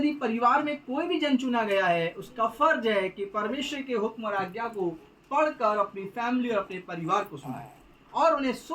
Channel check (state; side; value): identical; both; correlation 1.00